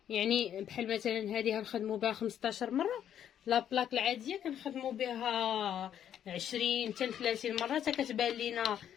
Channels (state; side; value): quieter; right; 9.8 dB